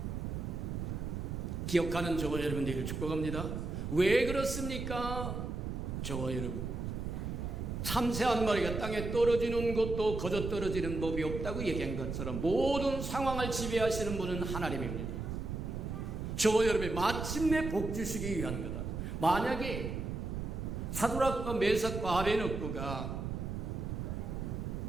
기억하는 저와 여러분들을 축복합니다. 왜 그렇습니까? 저와 여러분, 참새 한 마리가 땅에 떨어지는 것도 거저 떨어지는 법이 없다고 얘기한 것처럼 모든 상황을 지배하시는 분은 하나님입니다. 저와 여러분이 마침내 복 주시기 위한 거다. 만약에 사드락과 메삭과 아베느고가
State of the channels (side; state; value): right; noise; rumble, 4 dB below the sound